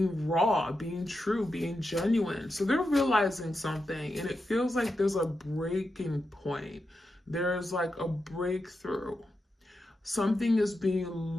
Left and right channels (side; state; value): both; normal; correlation 0.88